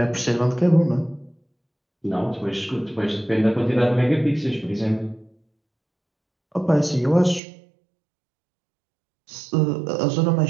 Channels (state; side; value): drops out; left; at 7.4 s